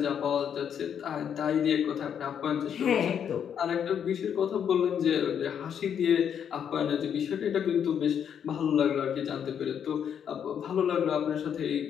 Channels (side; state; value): right; quieter; 8.3 dB